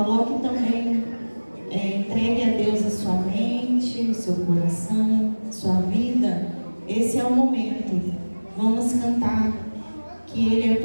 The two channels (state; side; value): inverted; both; correlation -1.00